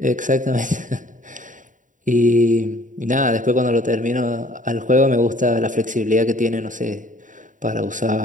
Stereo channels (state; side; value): late; left; 0.37 ms